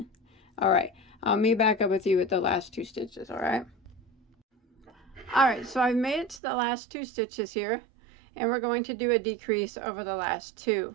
Alright, I'll meet back up with you at the last 2 stitches, alright? Alright, so I've made it to the last 2 stitches here, and we're going to do a decrease over the last 2.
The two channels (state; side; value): drops out; left; at 6.4 s